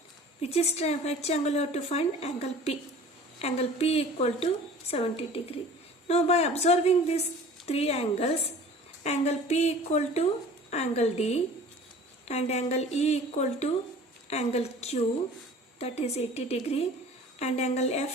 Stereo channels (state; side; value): normal; both; correlation 0.45